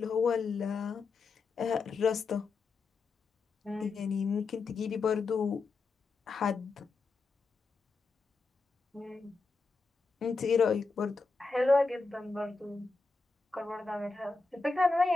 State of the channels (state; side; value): quieter; right; 4.1 dB